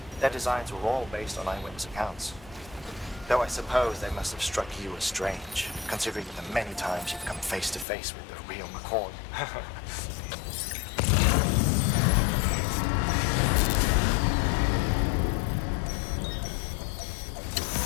Their designs were all based on eyewitness accounts. Though I suppose they must have struck you as strange, considering the many times you've come face to face with the real McCoy.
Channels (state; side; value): drops out; right; at 7.9 s